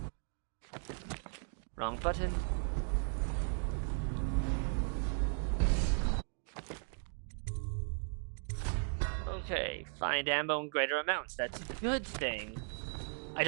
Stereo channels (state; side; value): silent; left; 53 dB below the other